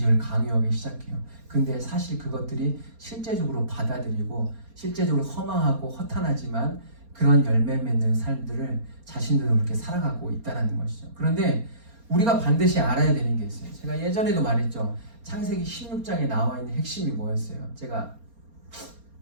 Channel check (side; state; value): left; late; 4.3 ms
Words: 강요하기 시작해요. 근데 사실 그것들이 실제적으로 받아들이고 실제적으로 허망하고 허탄하지만 그런 열매 맺는 삶들을 자신들도 그렇게 살아가고 있다는 것이죠. 그런데 우리가 반드시 알아야 되는 게 있어요. 제가 예전에도 말했죠. 창세기 16장에 나와 있는 핵심이 뭐였어요? 제가